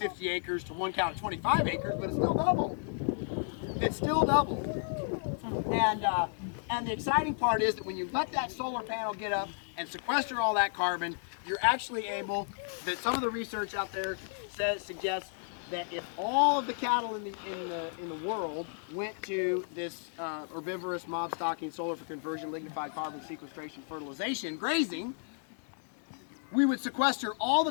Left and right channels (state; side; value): silent; right; 56 dB below the other